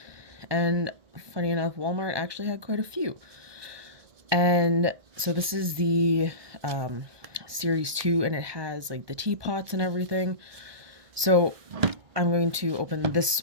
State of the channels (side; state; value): left; late; 1.2 ms